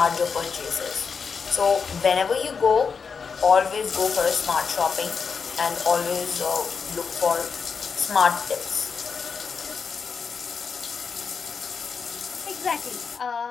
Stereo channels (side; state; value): right; quieter; 5.7 dB